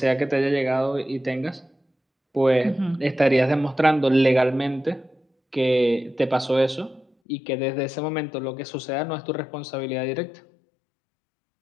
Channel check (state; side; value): drops out; right; at 7.1 s